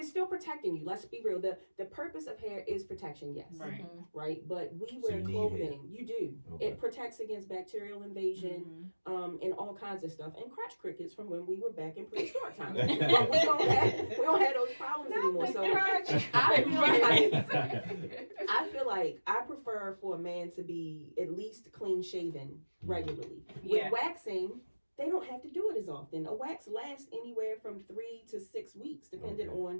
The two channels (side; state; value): both; inverted; correlation -1.00